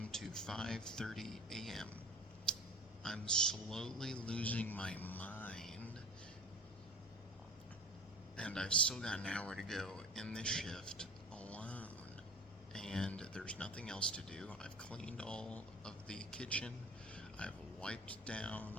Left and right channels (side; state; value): both; normal; correlation 0.41